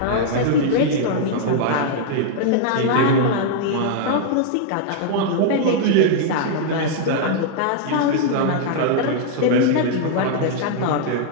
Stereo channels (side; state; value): both; different; correlation -0.01